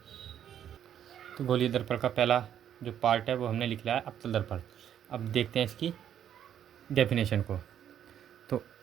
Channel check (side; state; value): left; quieter; 9.8 dB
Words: तो गोलीय दर्पण का पहला जो पार्ट है वो हमने लिख लिया है अवतल दर्पण। अब देखते हैं इसकी डेफिनेशन को। तो